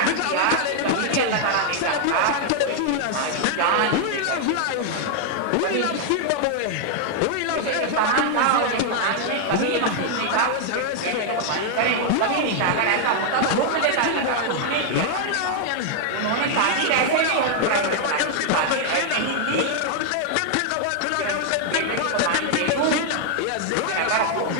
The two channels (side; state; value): both; different; correlation 0.00